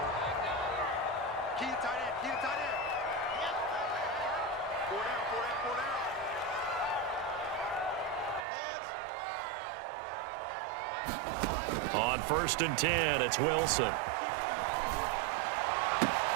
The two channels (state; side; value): drops out; left; at 8.5 s